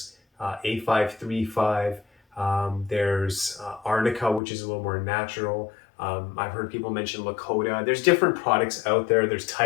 A535. There's Arnica, which is a little more natural. I've heard people mention Lakota. There's different products out there. There's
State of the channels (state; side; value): drops out; right; at 4.4 s